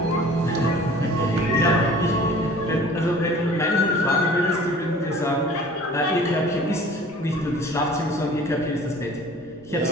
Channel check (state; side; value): normal; both; correlation 0.47